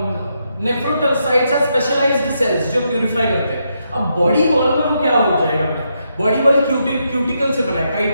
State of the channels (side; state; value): both; inverted; correlation -0.81